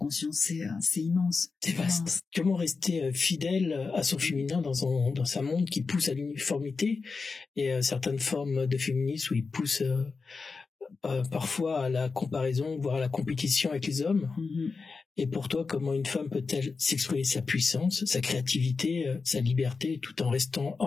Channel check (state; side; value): quieter; right; 4.5 dB